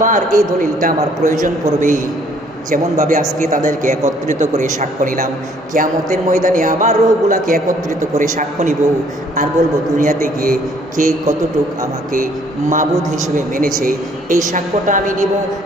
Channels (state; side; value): normal; both; correlation 0.62